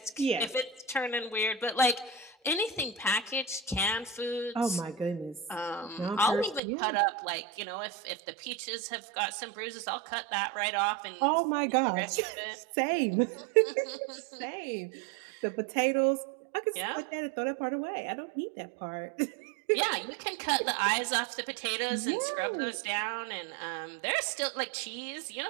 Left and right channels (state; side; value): drops out; left; at 6.6 s